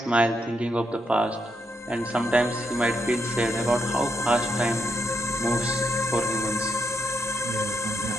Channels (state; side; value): normal; both; correlation 0.80